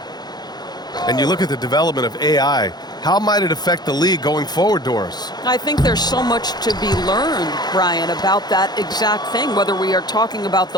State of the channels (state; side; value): late; right; 0.20 ms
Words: And you look at the development of AI. How might it affect the league going forward, Doris? I think there's so much to be learned, Brian, about that exact thing, whether we are talking about